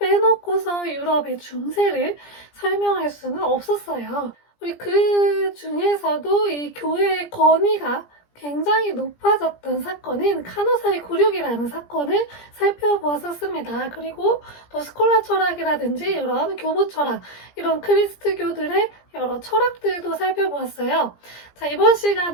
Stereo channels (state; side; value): late; right; 17 ms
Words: 유럽의 중세를 설명할 수는 없었어요. 우리 그 중에서도 이 교회의 권위가 굉장히 높아졌던 사건인 카노사의 굴욕이라는 사건을 살펴보았었습니다. 그리고 또 스콜라 철학이라든지 이런 교부 철학, 이런 크리스트교들의 여러 철학들도 살펴보았어요. 자, 이번